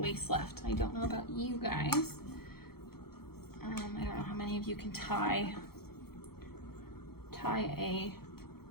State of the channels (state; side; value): late; right; 0.95 ms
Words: left. I don't know about you guys. I don't know how many of you can tie a